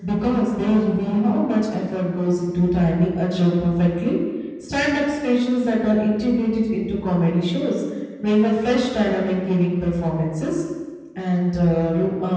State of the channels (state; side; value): identical; both; correlation 1.00